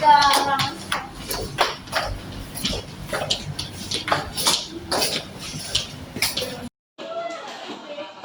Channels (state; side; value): identical; both; correlation 1.00